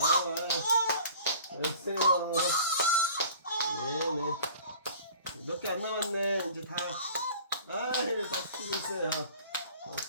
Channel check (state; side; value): inverted; both; correlation -0.46